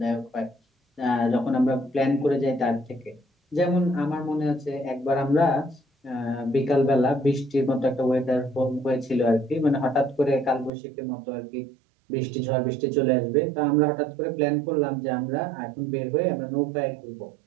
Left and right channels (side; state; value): left; drops out; at 10.7 s